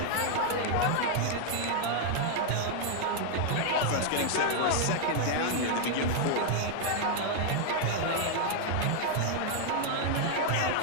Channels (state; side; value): different; both; correlation 0.00